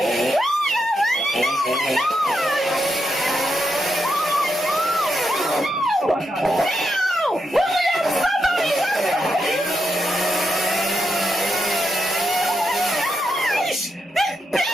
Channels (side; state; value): both; normal; correlation 0.83